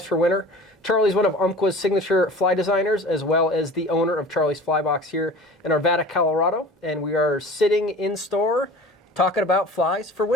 for winter. Charlie's one of Umpqua's signature fly designers, as well as the owner of Charlie's Fly Box here in Arvada, Colorado, and we are sitting in store talking about flies for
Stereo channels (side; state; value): both; normal; correlation 0.41